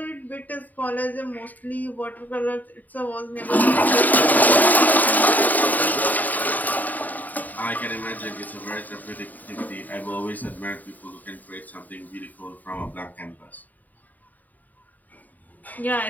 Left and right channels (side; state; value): right; late; 0.082 ms